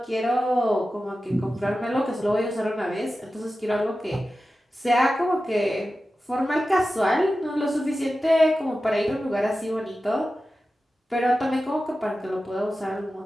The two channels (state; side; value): normal; both; correlation 0.94